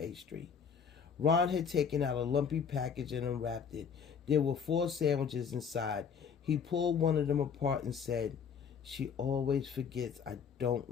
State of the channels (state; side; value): quieter; right; 6.7 dB